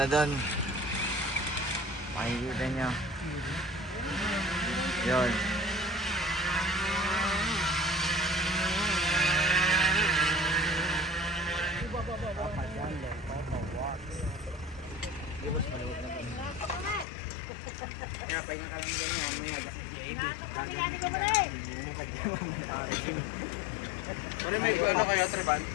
doon. Makikita nyo. Yun. Kaya pahinga ka lang dyan yan. Maya parang may ano kayo, Treban?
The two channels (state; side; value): drops out; right; at 17.1 s